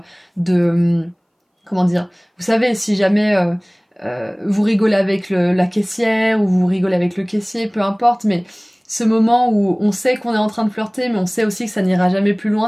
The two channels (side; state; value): both; identical; correlation 1.00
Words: de... comment dire? Vous savez, si jamais... vous rigolez avec la caissière ou vous rigolez avec le caissier, peu importe, mais ce moment où on sait qu'on est en train de flirter, mais on sait aussi que ça n'ira jamais plus loin,